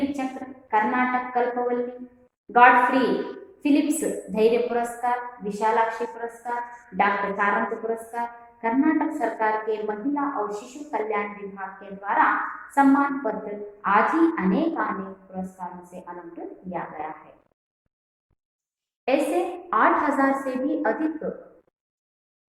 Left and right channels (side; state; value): both; identical; correlation 1.00